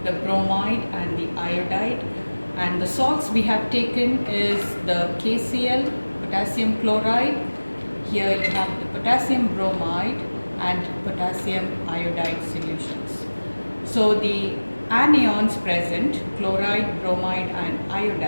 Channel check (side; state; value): both; inverted; correlation -1.00